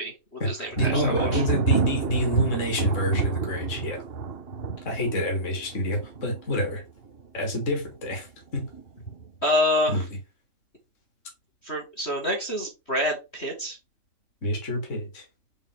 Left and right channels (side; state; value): right; late; 3.1 ms